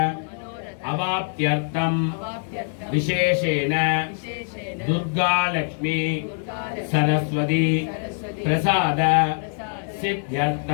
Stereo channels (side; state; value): right; silent; 63 dB below the other